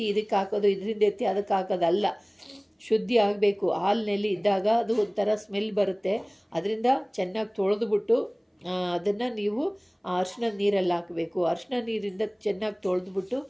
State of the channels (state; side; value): identical; both; correlation 1.00